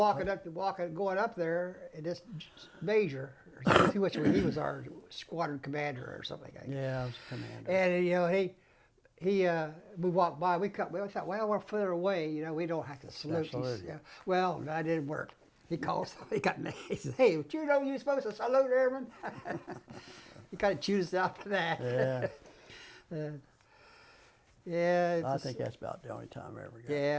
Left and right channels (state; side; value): identical; both; correlation 1.00